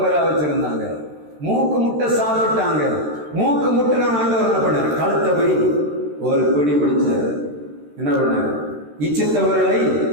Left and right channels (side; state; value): left; late; 13 ms